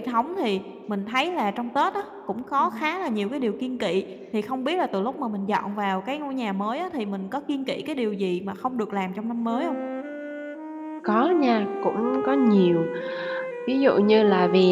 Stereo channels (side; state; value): both; identical; correlation 1.00